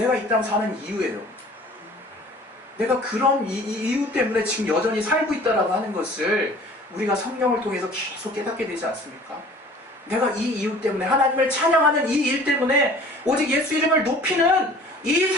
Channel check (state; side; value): normal; both; correlation 0.48